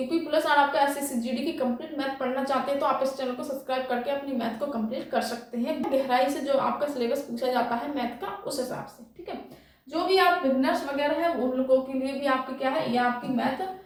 पुलिस और आपका SSC/GD की कंप्लीट मैथ पढ़ना चाहते हैं तो आप इस चैनल को सब्सक्राइब करके अपनी मैथ को कंप्लीट कर सकते हैं। गहराई से जो आपका सिलेबस पूछा जाता है मैथ का, उस हिसाब से, ठीक है। जो भी आप बिगनर्स वगैरह है उन लोगों के लिए भी आपके क्या है, ये आपकी मैथ,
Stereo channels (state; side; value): identical; both; correlation 1.00